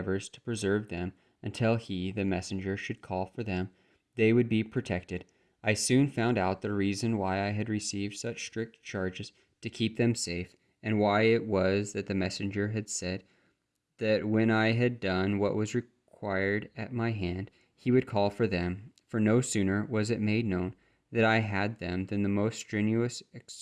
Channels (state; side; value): identical; both; correlation 1.00